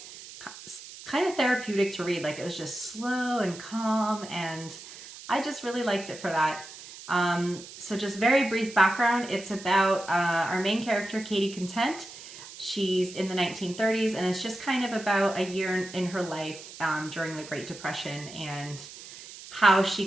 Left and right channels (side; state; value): right; noise; hiss, 15 dB below the sound